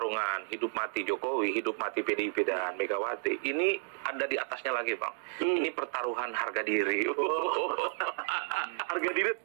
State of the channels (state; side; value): silent; left; digital silence